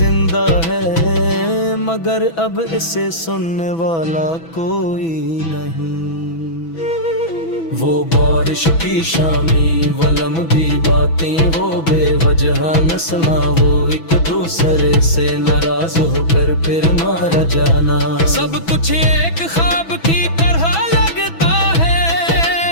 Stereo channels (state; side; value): late; right; 6.1 ms